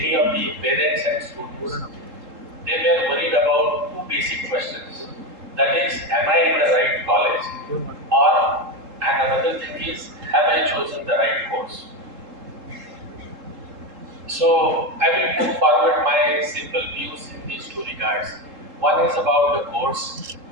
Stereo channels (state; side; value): late; left; 3.7 ms